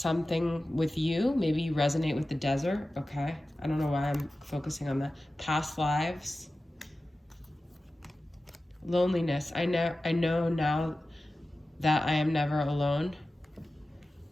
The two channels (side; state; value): both; normal; correlation 0.95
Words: with you. Maybe you resonate with the desert, okay? I don't know why I'm focusing on that. Past lives, loneliness. I know now that I am never alone.